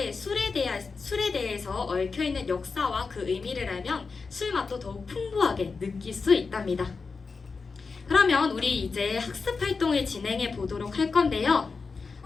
술에 대해서 얽혀있는 역사와 그 의미를 알면 술 맛도 더욱 풍부하게 느낄 수 있답니다. 그러면 우리 이제 학습 활동을 진행해 보도록 할 건데요.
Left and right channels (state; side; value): quieter; right; 4.7 dB